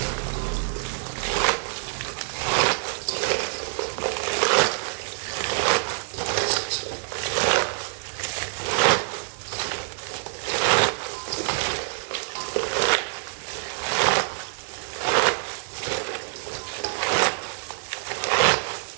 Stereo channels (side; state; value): left; silent; 61 dB below the other